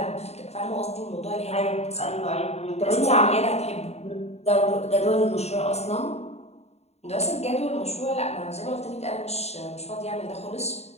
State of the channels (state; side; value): late; right; 0.31 ms